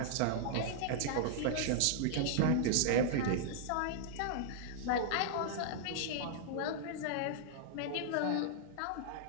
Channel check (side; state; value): both; different; correlation -0.01